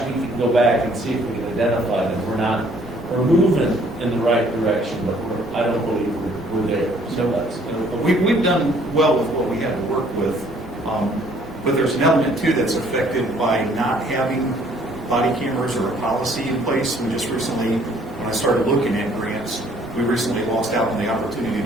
we can go back and see if we can identify them. We're moving in the right direction, but I don't believe we're there. So that's, We've done well with what we had to work with, but there's an element too that's affected by not having body cameras or a policy in place. We just recently, when I started looking at grants, we recently lost out on the opportunity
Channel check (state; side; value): normal; both; correlation 0.61